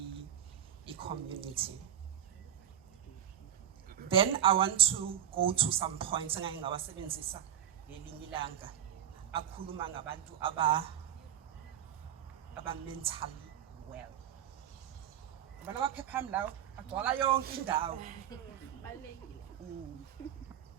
a community. Then I want to go to some points engake ngawasebenzisa ngelinye ilanga. Akhuluma ngabantu aba mentally well. Abana baphepha mlawo agcwala yonke indawo.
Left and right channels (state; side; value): quieter; left; 10.0 dB